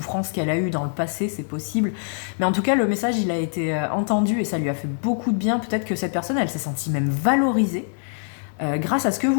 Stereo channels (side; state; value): right; silent; digital silence